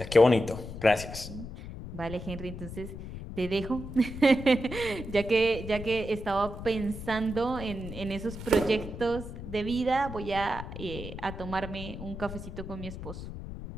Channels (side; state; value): left; noise; rumble, 10 dB below the sound